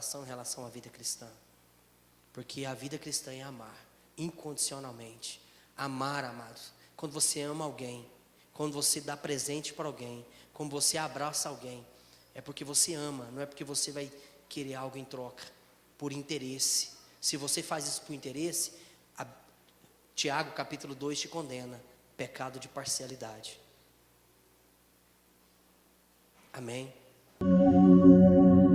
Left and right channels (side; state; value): both; identical; correlation 1.00